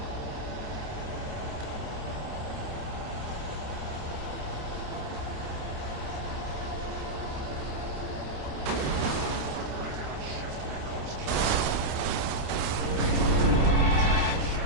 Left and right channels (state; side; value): late; left; 29 ms